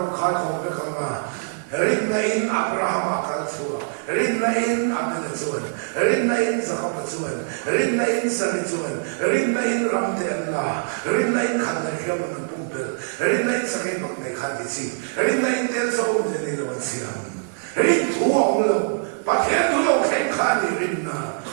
khay ko be kama rin na in Abraham akalatsuwa rin na in Abdalatsuwan rin na in Zakapatsuwan rin na in Salitsuwan rin na in Ramdella rin na in Kandahiyam ng Pumpel rin na in Sakibak na Ikandisi rin na in Tel sa Umdinilawan siyam rin tuwang lang pakyan tulong kay Kani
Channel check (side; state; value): left; silent; 63 dB below the other